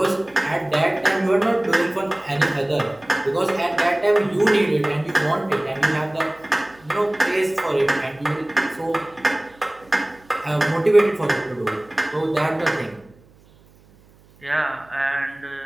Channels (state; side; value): noise; right; hum, 28 dB below the sound